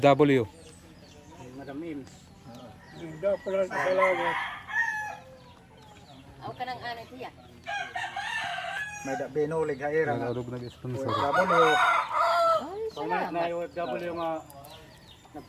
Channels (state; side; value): identical; both; correlation 1.00